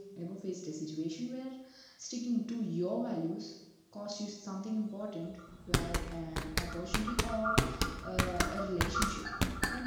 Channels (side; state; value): both; identical; correlation 1.00